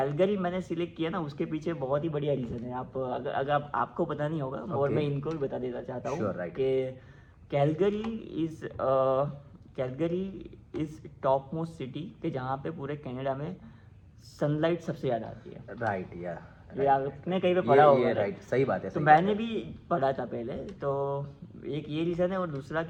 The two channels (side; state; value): both; identical; correlation 1.00